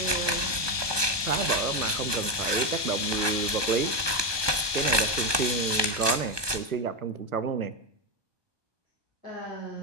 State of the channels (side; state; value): left; late; 1.2 ms